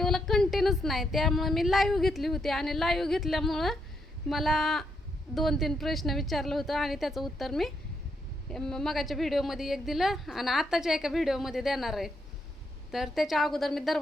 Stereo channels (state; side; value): normal; both; correlation 0.78